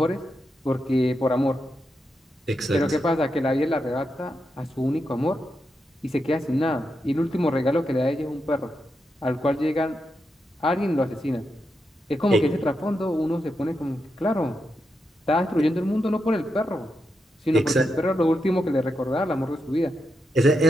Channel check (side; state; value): both; normal; correlation 0.85